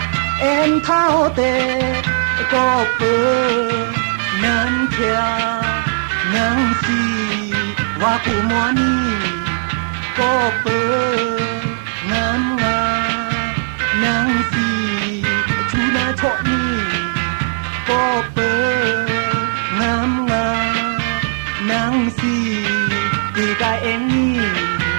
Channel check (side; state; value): left; silent; 68 dB below the other